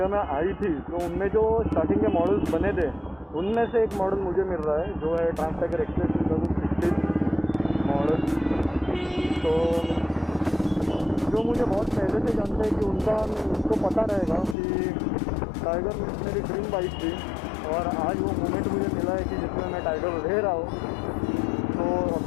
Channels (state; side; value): drops out; right; at 14.6 s